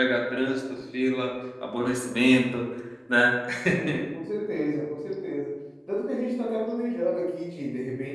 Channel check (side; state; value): both; identical; correlation 1.00